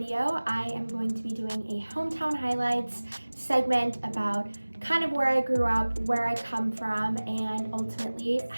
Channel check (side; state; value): both; inverted; correlation -1.00